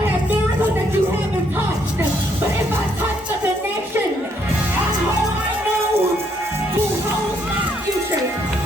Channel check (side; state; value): both; normal; correlation 0.71